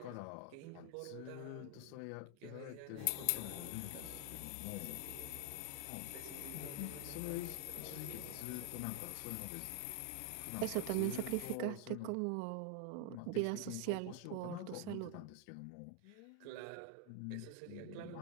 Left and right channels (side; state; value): both; different; correlation 0.00